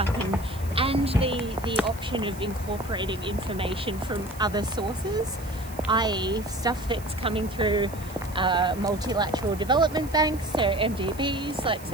and the option of incorporating information from other sources, i.e. stuff that's coming through multilateral development banks, so MDBs, like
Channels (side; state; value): right; noise; hiss, 19 dB below the sound